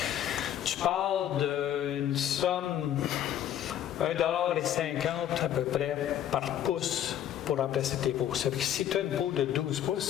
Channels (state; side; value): quieter; right; 10.9 dB